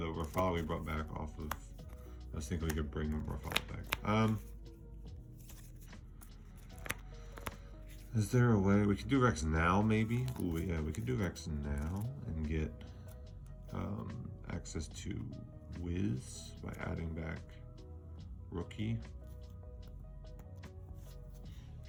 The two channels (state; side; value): identical; both; correlation 1.00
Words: Rafala we brought back off of, I was thinking we could bring Rafala back. Is there a way we could do Rex now, maybe? Ooh, yeah, we could do Rex now and get access to Wiz by adding back Rookie.